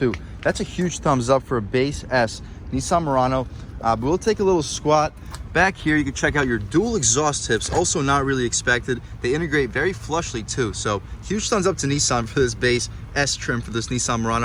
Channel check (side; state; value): both; identical; correlation 1.00